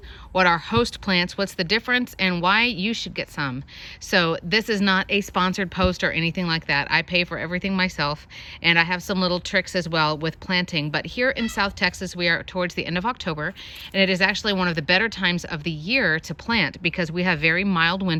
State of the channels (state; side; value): identical; both; correlation 1.00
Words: what are host plants, what's the difference, and why you should get some. So this is not a sponsored post or anything like that. I pay for everything myself, and I have some little tricks as well with planting. But here in South Texas, we are towards the end of October, and it is actually one of the better times of the year to plant because we have very mild